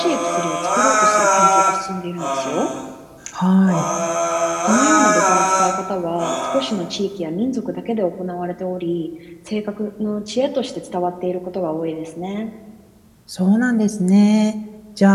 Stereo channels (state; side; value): identical; both; correlation 1.00